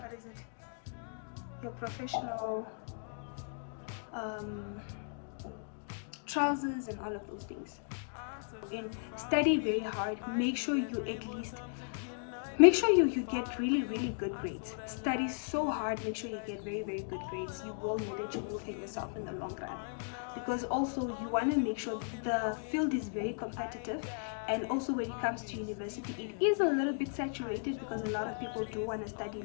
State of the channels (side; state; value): right; silent; digital silence